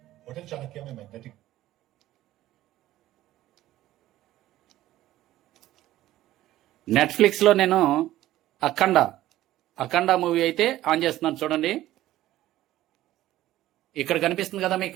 నెట్ఫ్లిక్స్ లో నేను అఖండ మూవీ అయితే ఆన్ చేస్తున్నాను. చూడండి, ఇక్కడ కనిపిస్తుంది కదా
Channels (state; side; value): quieter; left; 14.7 dB